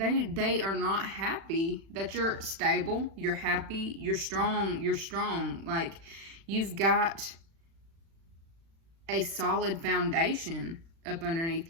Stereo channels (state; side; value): late; left; 36 ms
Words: are not happy that you're stable, you're happy, you're strong. Like you've got a solid foundation up underneath